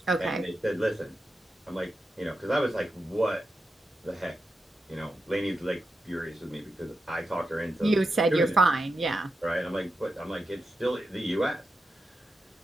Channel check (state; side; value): normal; both; correlation 0.88